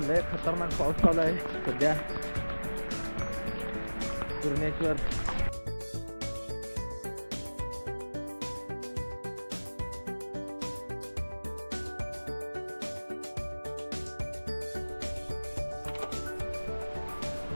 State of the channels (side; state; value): both; inverted; correlation -1.00